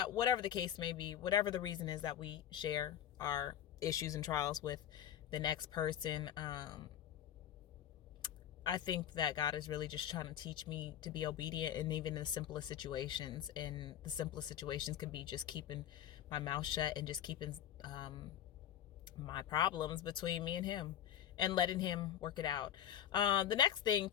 whatever the case may be, whatever the reason is that we share our issues and trials with the next person. I think that God is really just trying to teach me to be obedient, and even in the simplest situations. And the simplest situations can be just keeping my mouth shut and just keeping my problems between me and him and letting him work it out. The next thing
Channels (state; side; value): quieter; right; 10.6 dB